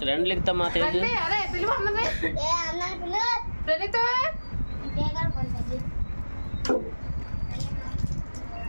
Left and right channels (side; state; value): both; inverted; correlation -1.00